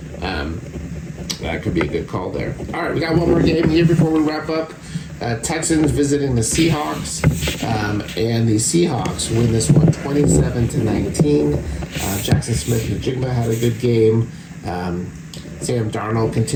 That could be a good call there. All right, we got one more game here before we wrap up. Texans visiting the Seahawks, and the Seahawks win this one 27-19. Jackson Smith-Njigba had a good game. Sam Darnold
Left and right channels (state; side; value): identical; both; correlation 1.00